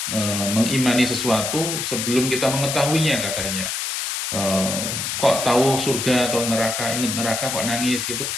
mengimani sesuatu sebelum kita mengetahuinya katanya. Kok tahu surga atau neraka, ingat neraka kok nangis gitu,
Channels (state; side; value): noise; left; hiss, 3 dB below the sound